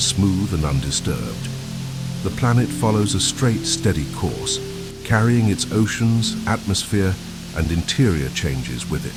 smooth and undisturbed. The planet follows a straight, steady course, carrying its oceans, atmosphere, and interior changes with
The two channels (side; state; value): both; identical; correlation 1.00